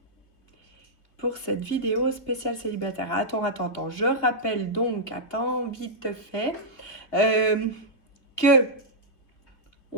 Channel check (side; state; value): right; late; 2.7 ms